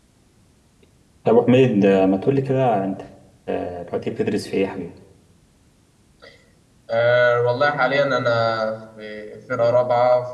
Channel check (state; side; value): identical; both; correlation 1.00